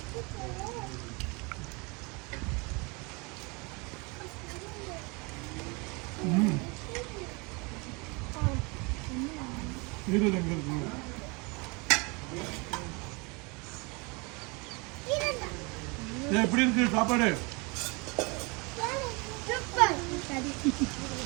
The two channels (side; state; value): left; quieter; 28.8 dB